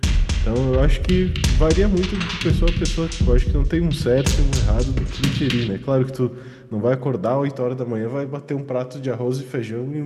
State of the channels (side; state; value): both; identical; correlation 1.00